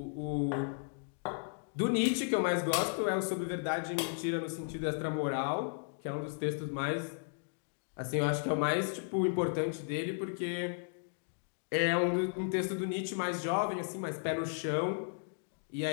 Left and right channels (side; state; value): right; silent; digital silence